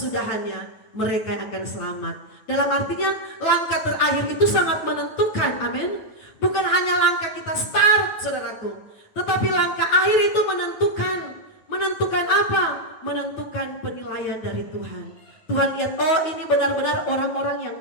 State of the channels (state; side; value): late; right; 9.3 ms